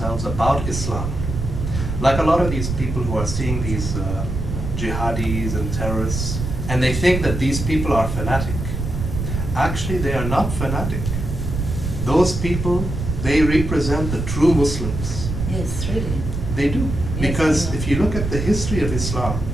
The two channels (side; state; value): right; noise; rumble, 4 dB below the sound